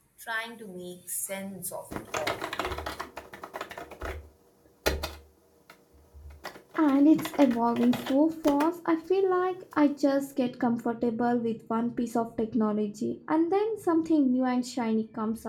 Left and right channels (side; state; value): both; identical; correlation 1.00